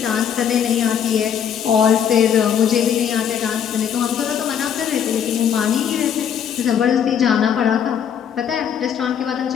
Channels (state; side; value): quieter; right; 8.4 dB